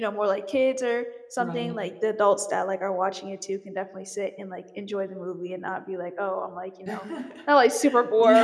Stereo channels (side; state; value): both; identical; correlation 1.00